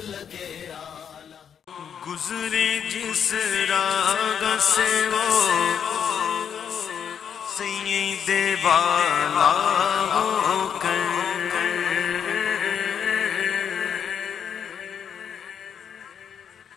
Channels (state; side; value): quieter; right; 7.9 dB